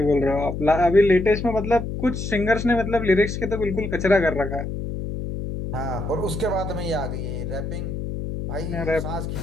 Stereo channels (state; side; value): noise; left; hum, 5 dB below the sound